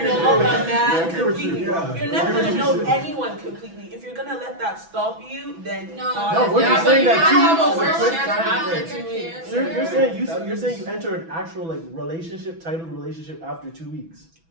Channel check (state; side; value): late; left; 6.1 ms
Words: know a man completely. You're never gonna know anyone completely. If you're gonna let that stop you, then No, what you're saying that you have a two worse weeks. chance after 2 weeks. So you're saying you enter an actual like relationship, titled relationship after 2 weeks.